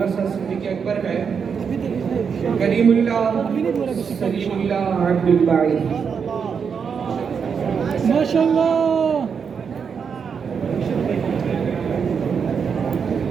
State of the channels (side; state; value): left; quieter; 6.4 dB